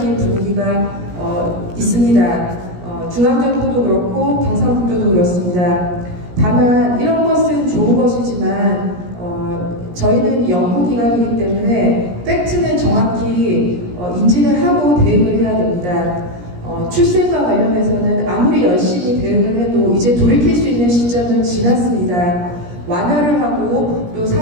분위기가 있습니다. 중앙정부도 그렇고 경상북도도 그렇습니다. 다만 이런 것은 좋은 것이지만 저희는 연구기관이기 때문에 팩트는 정확히 인지를 하고 대응을 해야 됩니다. 출생과 관련해서는 아무리 열심히 대응을 해도 이제 돌이킬 수 있는 시점은 지났습니다. 완화를 하고 또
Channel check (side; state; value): left; late; 17 ms